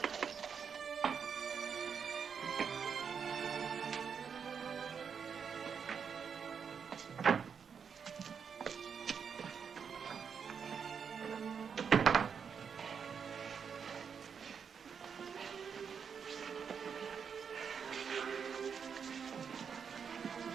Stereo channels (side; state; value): left; quieter; 6.7 dB